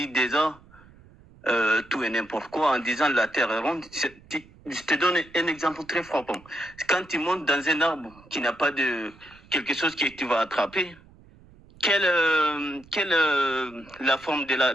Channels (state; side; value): noise; right; rumble, 25 dB below the sound